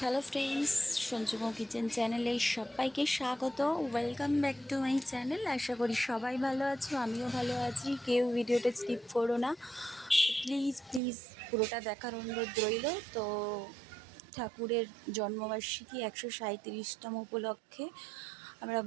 ফ্রেন্ডস, সঞ্জুমো কিচেন চ্যানেলে সবাইকে স্বাগত। Welcome back to my channel. আশা করি সবাই ভালো আছো, আমিও ভালো আছি। কেউ ভিডিওটা স্কিপ করো না, প্লিজ প্লিজ পুরোটা দেখার অনুরোধ রইল। তো ঠাকুরের জন্মবার্ষিকী 137তম উপলক্ষে আমরা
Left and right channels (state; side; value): drops out; left; at 11.0 s